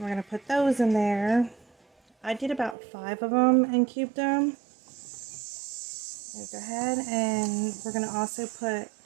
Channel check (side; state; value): left; drops out; at 2.8 s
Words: going to put those in there. I did about 5 of them and cubed them. Go ahead, and we're going to also put